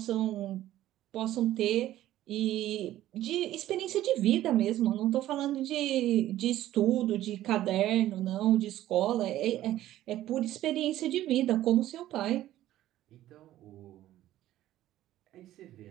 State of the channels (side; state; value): left; quieter; 13.9 dB